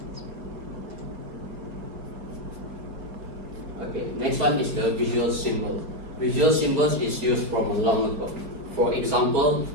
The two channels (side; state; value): left; late; 5.8 ms